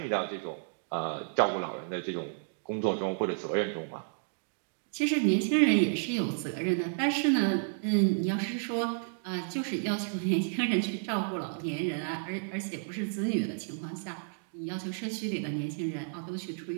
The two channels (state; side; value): silent; left; digital silence